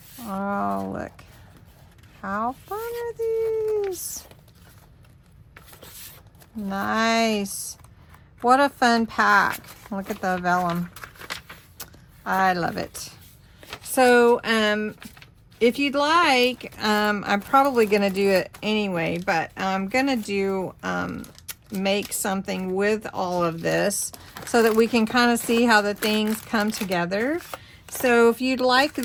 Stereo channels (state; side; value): identical; both; correlation 1.00